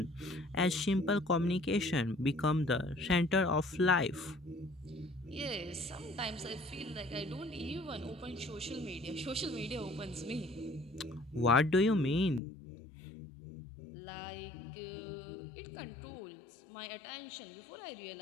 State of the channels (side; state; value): right; drops out; at 12.4 s